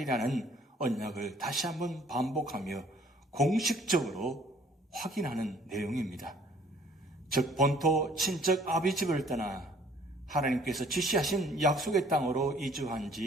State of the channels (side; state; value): both; normal; correlation 0.58